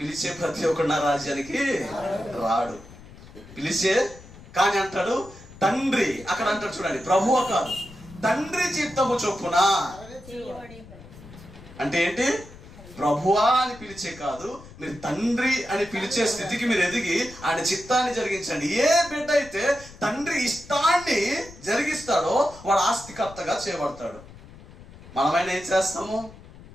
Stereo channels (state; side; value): noise; left; rumble, 19 dB below the sound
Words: ప్రతి ఒక్కడు నా రాజ్యానికి రాడు. పిలిచే కానీ అంటాడు తండ్రి. అక్కడ అంటాడు చూడండి, ప్రభువా కాదు, తండ్రి చిత్తము చొప్పున. అంటే ఏంటి? ప్రభువా అని పిలిచే కాదు, మీరు తండ్రి అని పిలిచే స్థితికి మీరు ఎదిగి ఆయన చిత్తాన్ని జరిగించండి. ఏ బిడ్డ అయితే తండ్రి ఇష్టాన్ని జరిగిస్తాడో వాడు ఆస్తికర్తగా చేయబడతాడు. మనమైనా ఏం